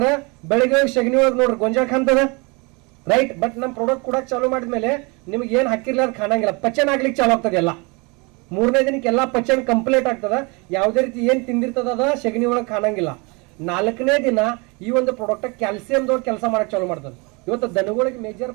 ಬೆಳಿಗ್ಗೆ ಸಗಣಿ ಒಳಗೆ ನೋಡ್ರಿ ಗೊಂಜಾಳ ಕಾಣ್ತದ. ರೈಟ್. ಬಟ್ ನಮ್ಮ ಪ್ರಾಡಕ್ಟ್ ಕೂಡ ಚಾಲೂ ಮಾಡಿದ್ಮೇಲೆ ನಿಮ್ಗೆ ಏನ್ ಹಾಕಿರ್ಲ ಅದು ಕಾಣಂಗಿಲ್ಲ, ಪಚನ ಆಗ್ಲಿಕ್ಕೆ ಚಾಲು ಆಗ್ತದೆ ಎಲ್ಲ. 3ನೇ ದಿನಕ್ಕೆ ಎಲ್ಲ ಪಚನ ಕಂಪ್ಲೀಟ್ ಆಗ್ತದ. ಯಾವುದೇ ರೀತಿ ಏನ್ ತಿಂದಿರ್ತದ ಅದ ಸಗಣಿ ಒಳಗೆ ಕಾಣಂಗಿಲ್ಲ. 4ನೇ ದಿನ ಈ ಒಂದು ಪ್ರಾಡಕ್ಟ್ ಕ್ಯಾಲ್ಸಿಯಂದವ್ರು ಕೆಲಸ ಮಾಡಕ್ ಚಾಲು ಮಾಡ್ತದೆ. ಇವತ್ತು ದನಗಳಿಗೆ ಮೇಜರ್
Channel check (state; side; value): quieter; left; 29.0 dB